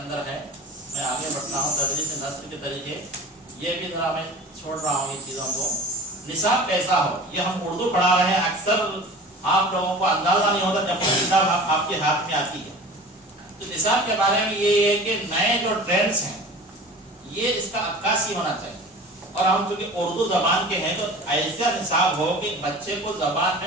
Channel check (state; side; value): normal; both; correlation 0.39